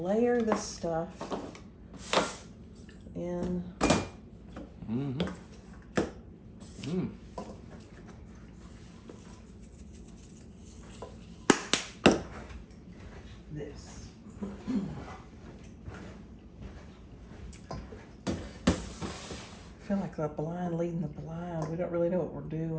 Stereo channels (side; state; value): both; identical; correlation 1.00